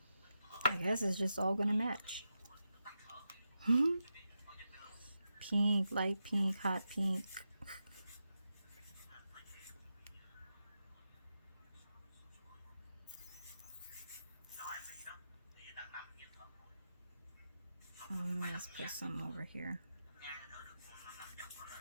I guess it's just all gonna match. Pink, light pink, hot pink. Let's put some over here.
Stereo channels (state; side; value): inverted; both; correlation -0.88